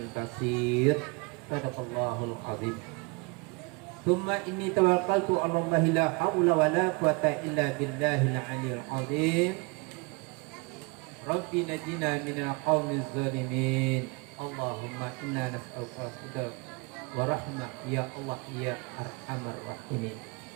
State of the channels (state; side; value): quieter; left; 29.2 dB